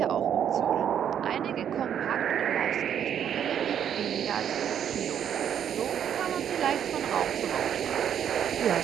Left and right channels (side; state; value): left; quieter; 9.1 dB